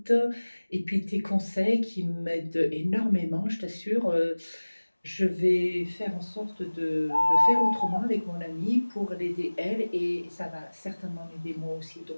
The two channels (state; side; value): inverted; both; correlation -1.00